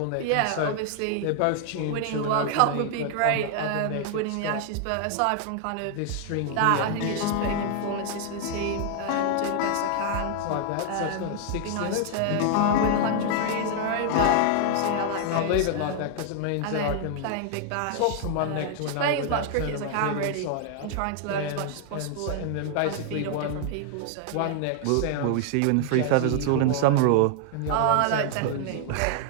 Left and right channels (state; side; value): different; both; correlation 0.00